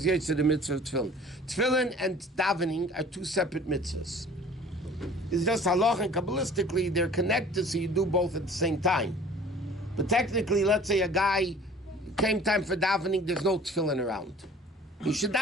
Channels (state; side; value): normal; both; correlation 0.47